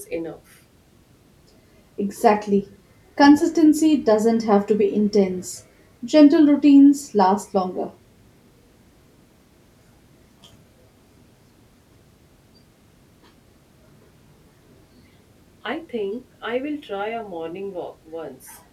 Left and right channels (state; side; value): identical; both; correlation 1.00